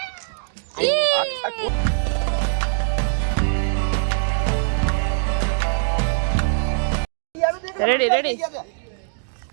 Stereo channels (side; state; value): left; silent; digital silence